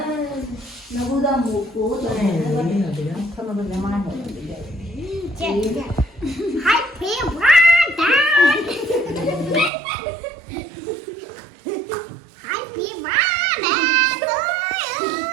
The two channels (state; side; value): drops out; left; at 9.7 s